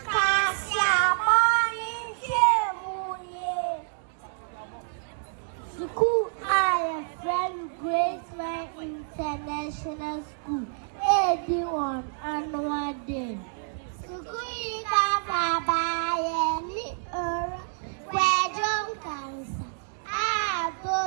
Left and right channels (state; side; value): silent; left; digital silence